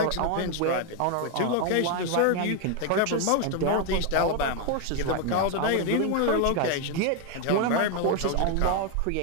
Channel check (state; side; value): different; both; correlation 0.01